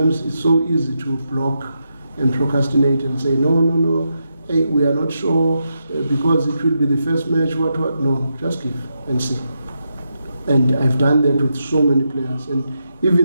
it's so easy to block and procrastinate and say, no, hey, we are not sure because it will be the first match, what. No, just give and see. And I've done that with so many players. And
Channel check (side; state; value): both; inverted; correlation -0.84